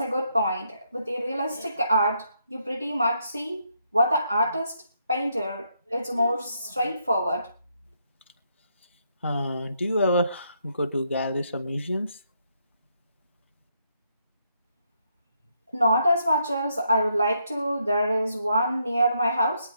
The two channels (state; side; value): inverted; both; correlation -0.76